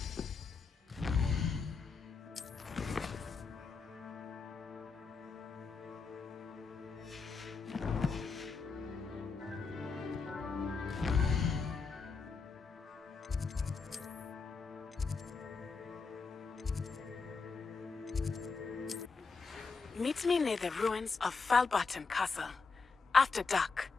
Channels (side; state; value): right; quieter; 4.6 dB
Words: Meet me near the ruins of Falbarton Castle. After dark.